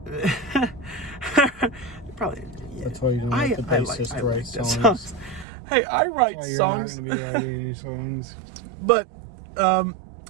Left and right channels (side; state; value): left; drops out; at 5.5 s